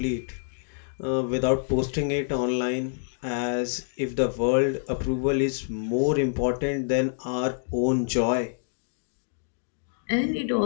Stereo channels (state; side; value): silent; right; digital silence